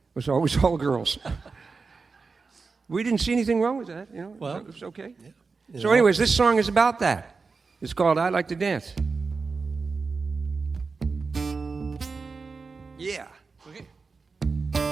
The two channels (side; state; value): left; quieter; 4.5 dB